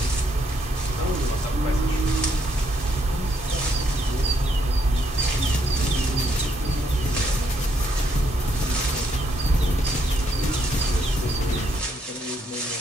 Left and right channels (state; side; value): normal; both; correlation 0.74